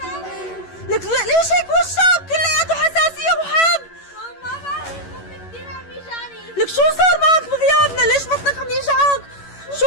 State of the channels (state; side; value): late; right; 11 ms